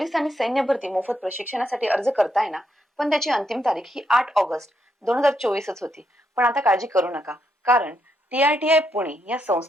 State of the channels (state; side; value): normal; both; correlation 0.79